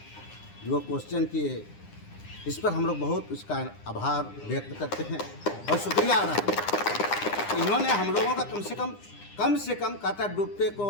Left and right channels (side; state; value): right; late; 9.8 ms